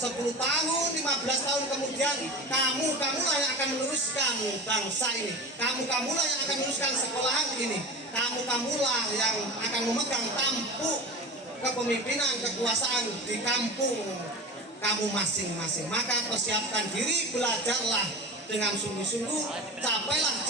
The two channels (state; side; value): normal; both; correlation 0.32